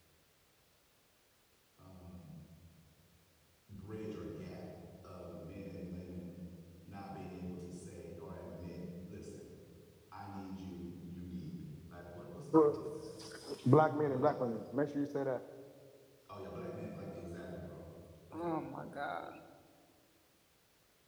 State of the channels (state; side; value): identical; both; correlation 1.00